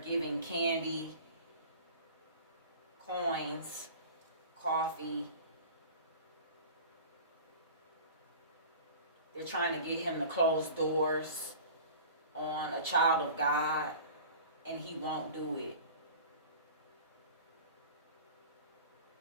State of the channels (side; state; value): both; inverted; correlation -0.40